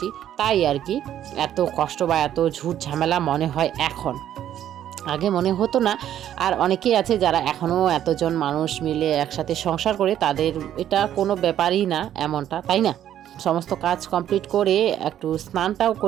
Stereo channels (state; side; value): quieter; left; 11.0 dB